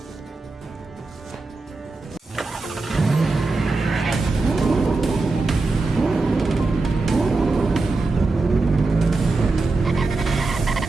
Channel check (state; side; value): quieter; left; 3.5 dB